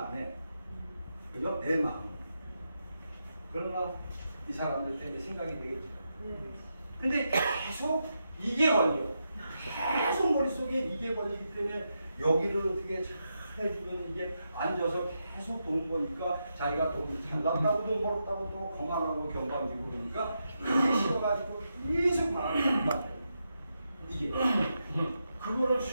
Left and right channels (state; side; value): inverted; both; correlation -0.85